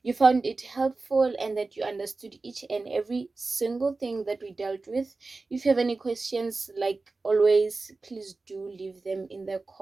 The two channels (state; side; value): quieter; left; 3.7 dB